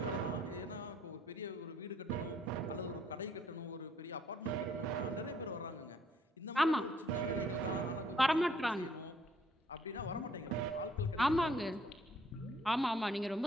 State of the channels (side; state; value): both; normal; correlation 0.64